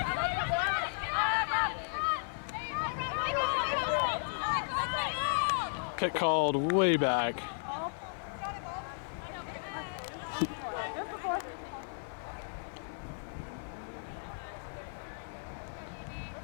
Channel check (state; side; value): silent; right; digital silence